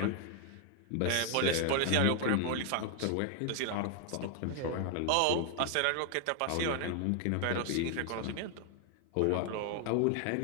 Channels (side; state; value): both; different; correlation 0.00